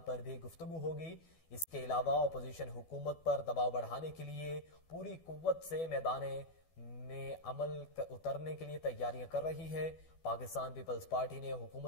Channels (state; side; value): late; right; 12 ms